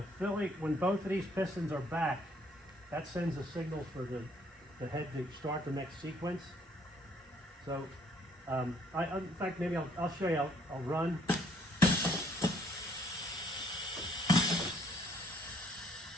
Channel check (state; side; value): normal; both; correlation 0.65